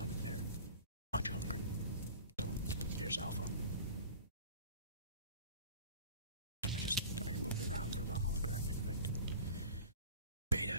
there. Much hungry. So, here's Alpha. I moved it around for the holographic effect. Beta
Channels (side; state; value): both; inverted; correlation -0.41